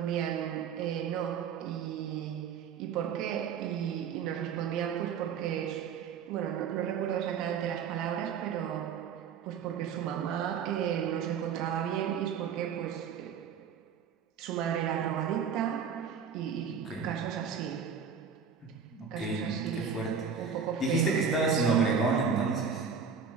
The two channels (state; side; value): quieter; left; 6.6 dB